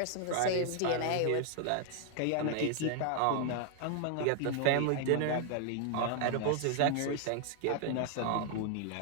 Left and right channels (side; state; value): both; different; correlation 0.00